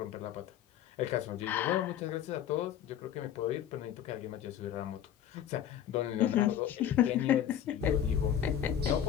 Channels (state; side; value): quieter; right; 10.1 dB